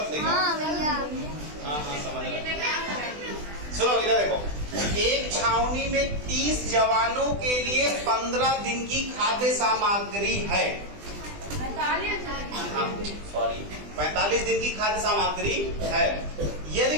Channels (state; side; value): late; left; 20 ms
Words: होगा। हाँ भैया। हाँ समझ रहे। चलो इधर देखो, एक छावनी में 30 जवानों के लिए 15 दिन की खाद्य सामग्री है। 45 दिन की खाद्य सामग्री है। यदि